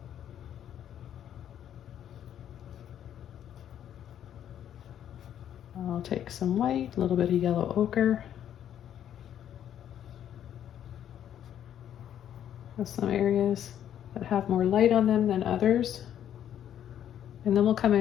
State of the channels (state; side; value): quieter; right; 10.2 dB